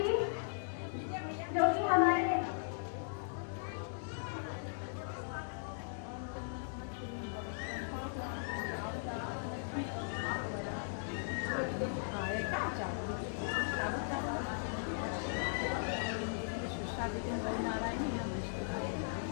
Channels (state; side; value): silent; right; digital silence